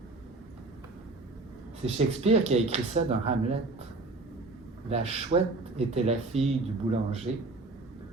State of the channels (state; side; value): quieter; left; 3.3 dB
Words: C'est Shakespeare qui a écrit ça dans Hamlet. La chouette était la fille du boulanger.